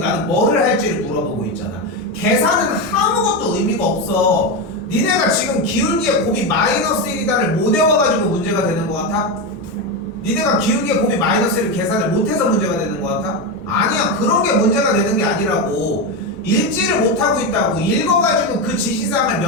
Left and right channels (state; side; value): normal; both; correlation 0.13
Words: 뭐를 할지를 물어보고 있잖아. 계산은 아무것도 의미가 없어. 니네가 지금 기울기의 곱이 마이너스 1이다를 못 외워가지고 문제가 되는 것 같아? 니네가 기울기의 곱이 마이너스 1을 계산을 못해서 문제가 되는 것 같아? 아니야. 그런 게 문제가 되는 게 아니라고. 읽지를 못하고 있다고. 읽어가지고 그 지시사항을